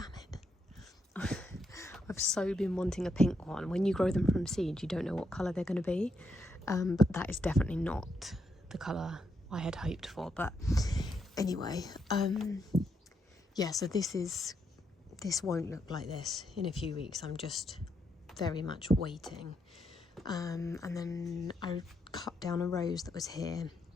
it. I've so been wanting a pink one. When you grow them from seed, you don't know what colour they're going to be. But that is definitely not the colour I had hoped for. But anyway, so this won't look like this in a few weeks. I'm just very much waiting. and then I cut down a rose that was here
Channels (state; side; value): normal; both; correlation 0.79